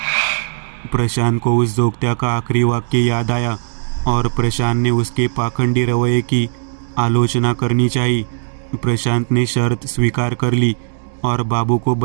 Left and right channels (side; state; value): left; silent; digital silence